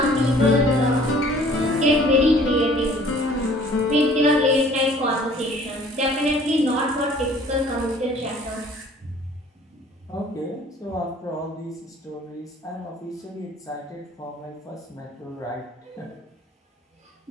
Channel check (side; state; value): both; normal; correlation 0.53